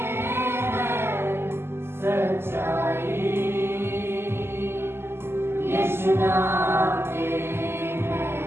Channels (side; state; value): left; late; 0.12 ms